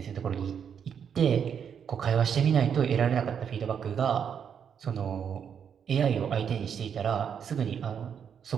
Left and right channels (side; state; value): left; quieter; 7.7 dB